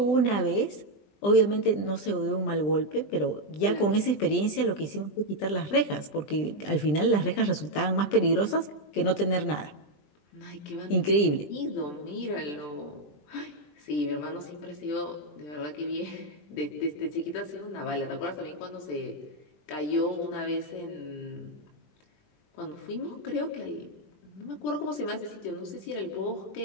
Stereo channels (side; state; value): right; late; 20 ms